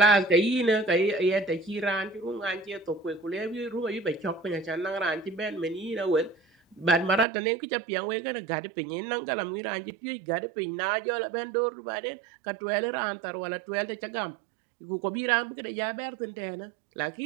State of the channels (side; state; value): left; drops out; at 7.2 s